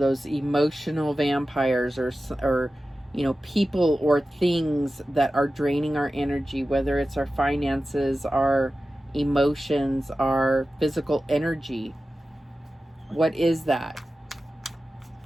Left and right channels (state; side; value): normal; both; correlation 0.94